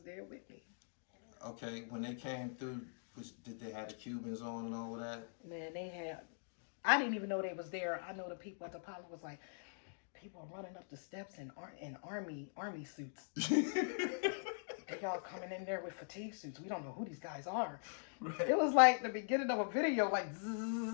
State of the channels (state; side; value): silent; right; digital silence